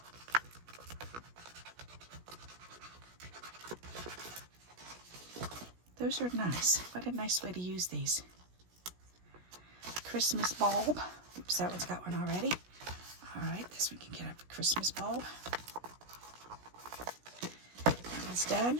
Those are nice. What a nice way to use these. Christmas bulb. Oops, that one's got one already. All right, this one can get up a Christmas bulb. That one's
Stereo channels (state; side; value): late; left; 17 ms